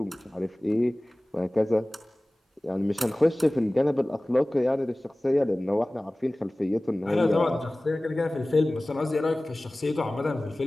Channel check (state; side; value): normal; both; correlation 0.98